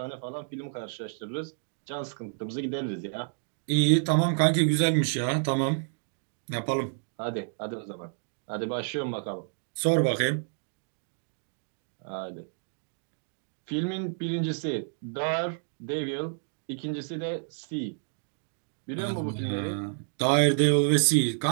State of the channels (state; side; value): silent; left; digital silence